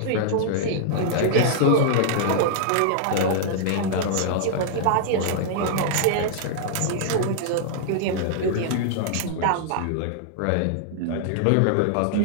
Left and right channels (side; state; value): both; different; correlation -0.01